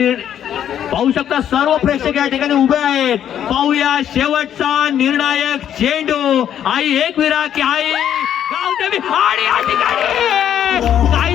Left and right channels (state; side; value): quieter; right; 10.0 dB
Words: पाहू शकता. सर्व प्रेक्षक या ठिकाणी उभे आहेत. पाहूया शेवटचा निर्णायक चेंडू. आई एकविरा की आई गावदेवी आणि या ठिकाणी